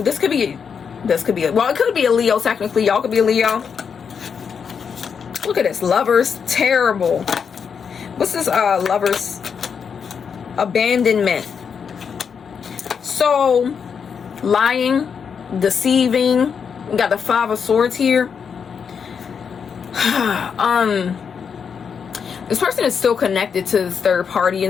This could be, well, it could be a Leo technically. Y'all could be a Leo. Look at this. Lovers. Terrible. What's this Lovers? Abandonment. So, lying, deceiving. We got the Five of Swords here. This person is still connected to this third party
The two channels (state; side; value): quieter; right; 6.6 dB